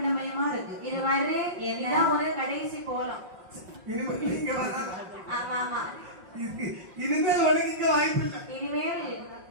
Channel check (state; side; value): late; left; 5.5 ms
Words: இருக்கு. இது மாதிரி இதுதான் ஒரு கடைசி கோலம். ஆமா ஆமா, இனிமேல்